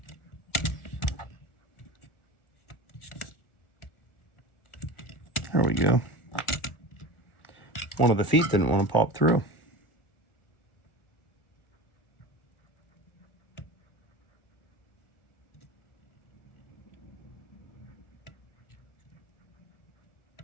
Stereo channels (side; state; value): right; late; 1.4 ms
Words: There we go. One of the feet didn't want to pop through.